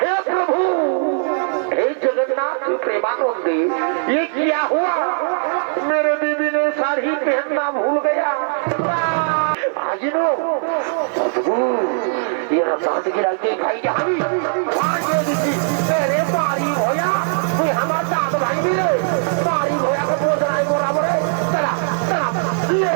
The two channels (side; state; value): left; silent; 55 dB below the other